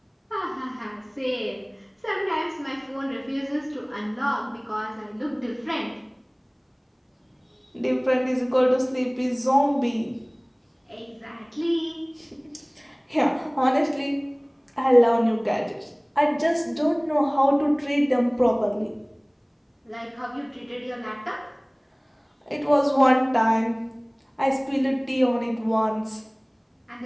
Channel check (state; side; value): identical; both; correlation 1.00